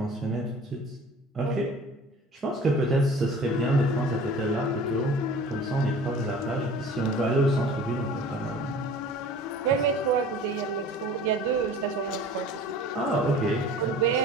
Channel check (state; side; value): normal; both; correlation 0.44